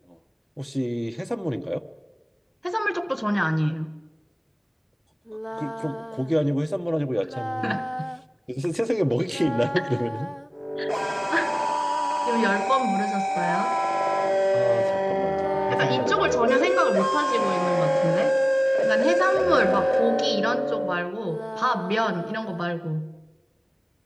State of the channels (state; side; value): identical; both; correlation 1.00